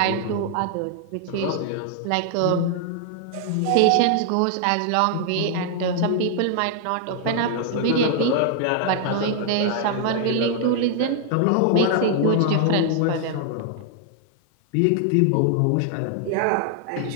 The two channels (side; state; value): both; different; correlation 0.00